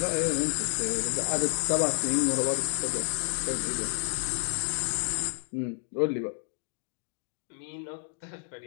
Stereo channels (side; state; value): right; silent; digital silence